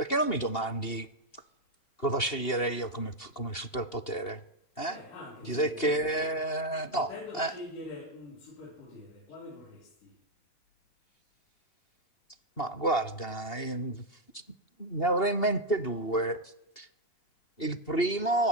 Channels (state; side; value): late; right; 2.8 ms